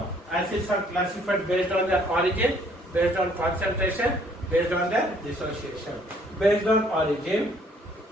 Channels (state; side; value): normal; both; correlation 0.62